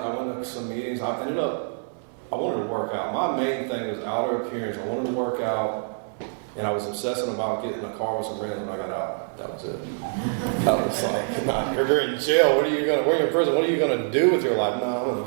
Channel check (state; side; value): silent; left; digital silence